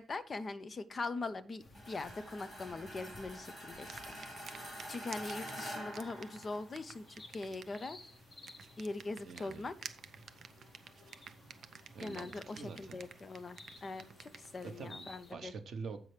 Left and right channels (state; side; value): normal; both; correlation 0.87